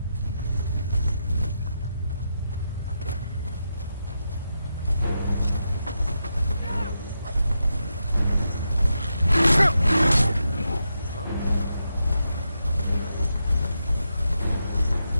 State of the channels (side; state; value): both; inverted; correlation -0.85